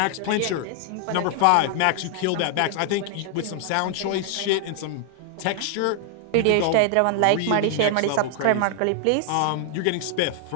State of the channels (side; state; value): both; different; correlation 0.00